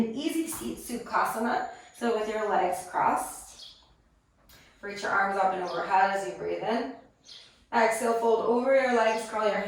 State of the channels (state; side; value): identical; both; correlation 1.00